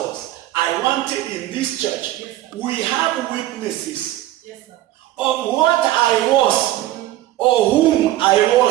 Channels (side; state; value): left; quieter; 14.9 dB